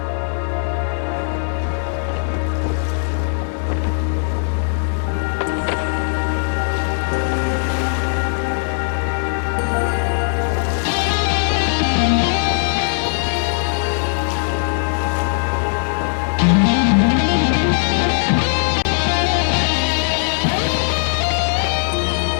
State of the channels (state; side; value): silent; right; digital silence